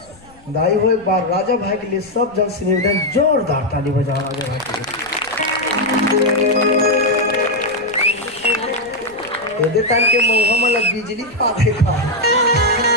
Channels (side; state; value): left; noise; rumble, 27 dB below the sound